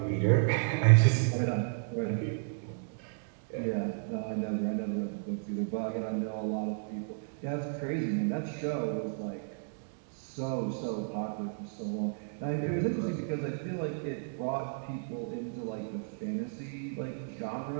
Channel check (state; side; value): silent; left; digital silence